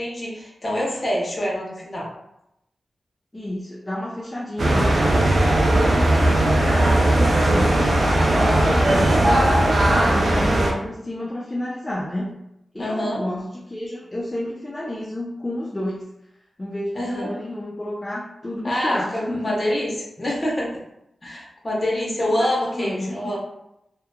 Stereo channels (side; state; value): both; normal; correlation 0.93